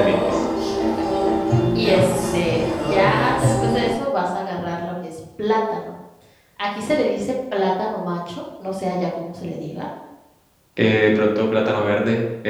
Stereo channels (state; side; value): identical; both; correlation 1.00